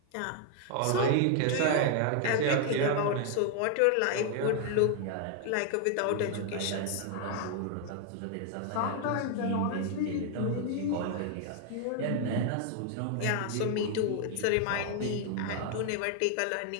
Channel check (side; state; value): both; different; correlation 0.00